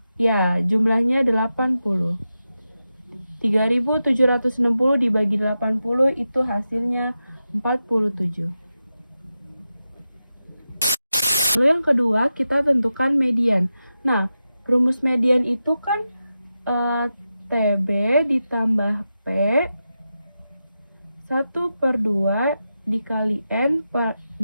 Ya, jumlahnya 80. 3760 dibagi 80 itu hasilnya 47. Lalu yang kedua, kita tentukan median. Nah, rumus median itu kan TB ditambah P 1/2 dikali N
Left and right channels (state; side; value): inverted; both; correlation -0.90